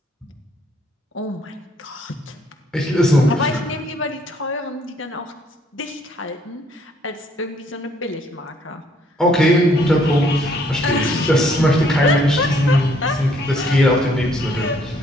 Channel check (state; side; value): normal; both; correlation 0.65